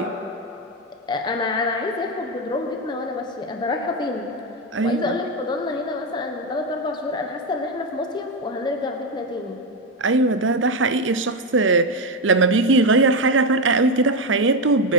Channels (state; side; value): normal; both; correlation 0.10